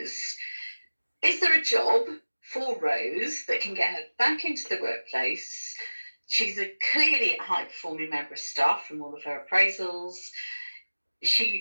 there a job for Rose that can get her back into the workplace? She's a clearly high-performing member of staff from all of her appraisals.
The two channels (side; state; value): both; inverted; correlation -1.00